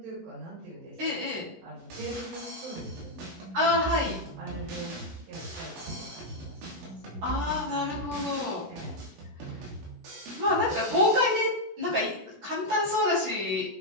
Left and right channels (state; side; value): late; left; 16 ms